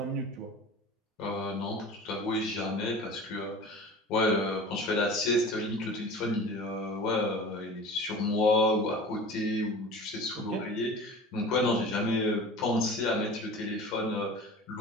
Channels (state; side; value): normal; both; correlation 0.38